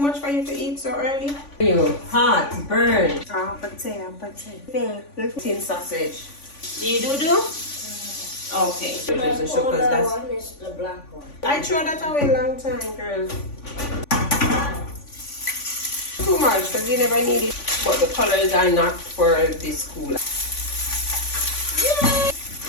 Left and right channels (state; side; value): late; right; 3.5 ms